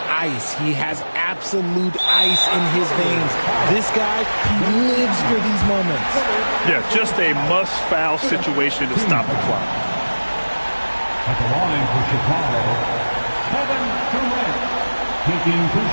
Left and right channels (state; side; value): inverted; both; correlation -1.00